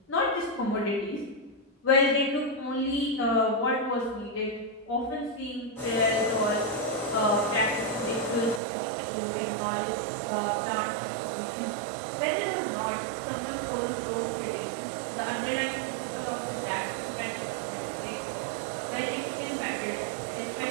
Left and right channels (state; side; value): drops out; left; at 8.6 s